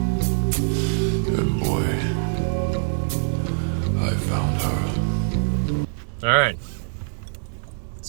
And boy, I found her. All right.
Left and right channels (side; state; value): left; silent; digital silence